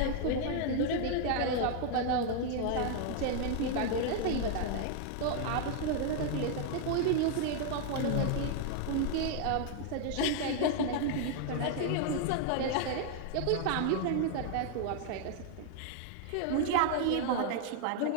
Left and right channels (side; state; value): both; different; correlation 0.00